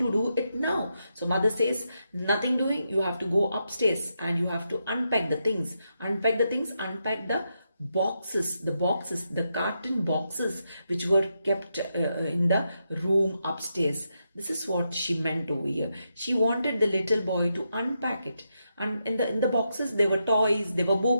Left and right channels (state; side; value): inverted; both; correlation -0.84